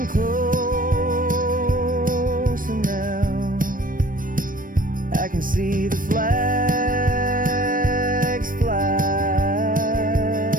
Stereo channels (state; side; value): late; left; 0.40 ms